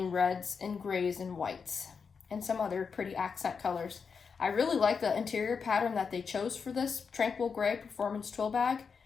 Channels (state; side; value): quieter; right; 5.7 dB